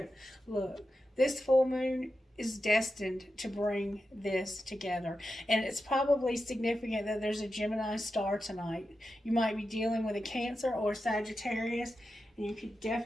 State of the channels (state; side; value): normal; both; correlation 0.90